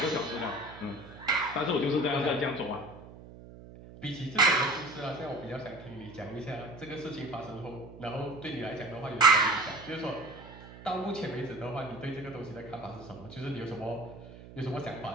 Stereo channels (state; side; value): noise; right; hum, 16 dB below the sound